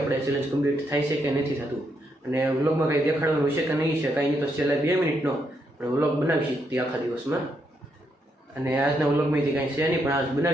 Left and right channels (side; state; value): both; normal; correlation 0.78